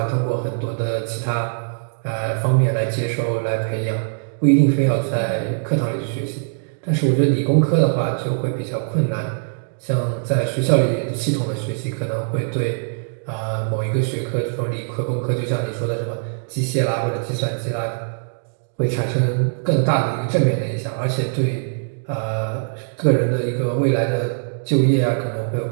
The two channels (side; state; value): left; silent; digital silence